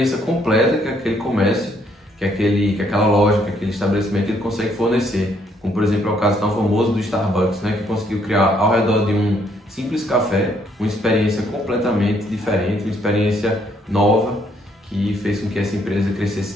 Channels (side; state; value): both; normal; correlation 0.69